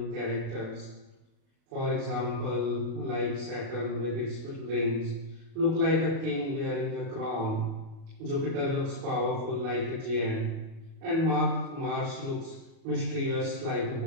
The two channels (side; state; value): left; late; 36 ms